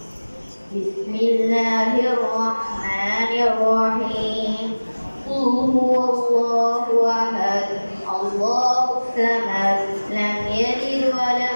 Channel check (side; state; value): both; inverted; correlation -1.00